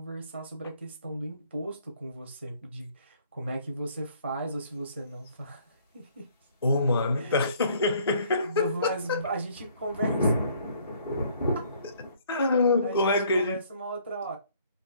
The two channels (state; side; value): inverted; both; correlation -0.60